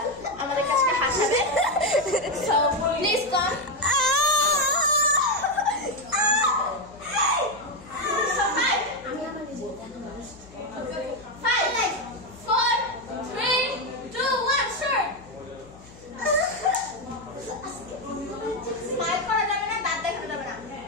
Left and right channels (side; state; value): left; noise; hum, 22 dB below the sound